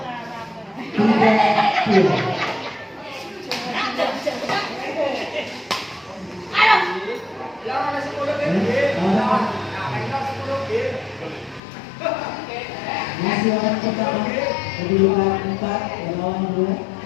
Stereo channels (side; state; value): right; drops out; at 11.6 s